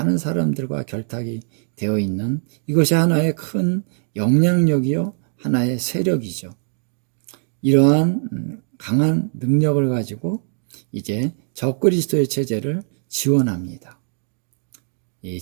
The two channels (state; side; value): silent; left; 65 dB below the other